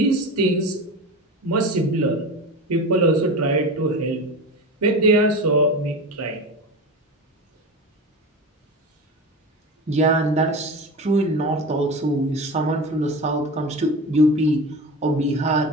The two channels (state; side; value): normal; both; correlation 0.28